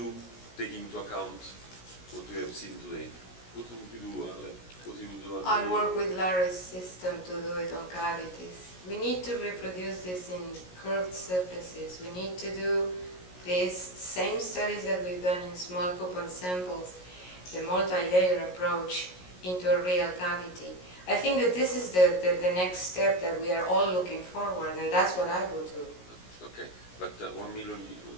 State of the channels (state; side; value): late; right; 17 ms